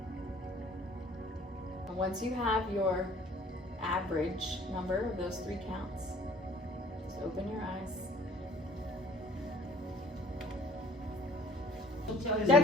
And once you have your average number of those 3 counts, just open your eyes.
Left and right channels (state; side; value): normal; both; correlation 0.53